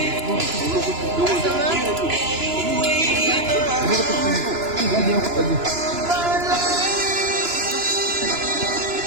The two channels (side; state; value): left; late; 2.9 ms